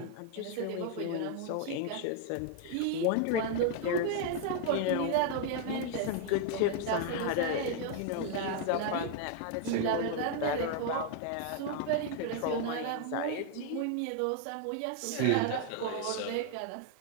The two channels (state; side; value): different; both; correlation 0.00